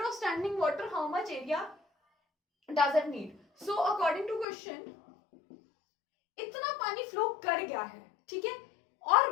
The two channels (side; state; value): right; drops out; at 4.5 s